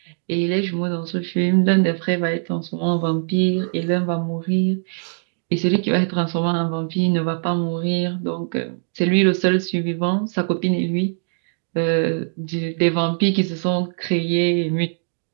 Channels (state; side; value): silent; left; digital silence